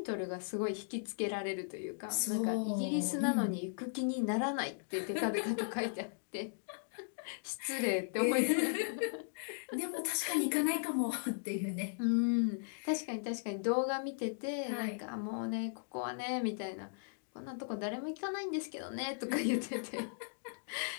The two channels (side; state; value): right; silent; digital silence